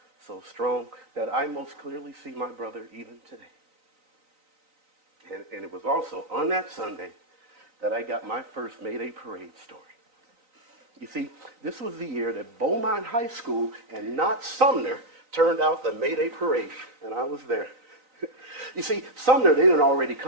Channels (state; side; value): late; left; 3.9 ms